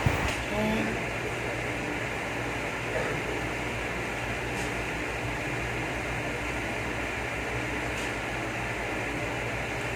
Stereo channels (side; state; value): both; identical; correlation 1.00